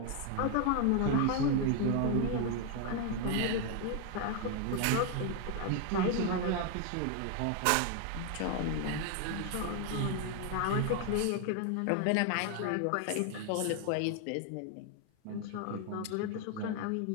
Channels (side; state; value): both; different; correlation 0.01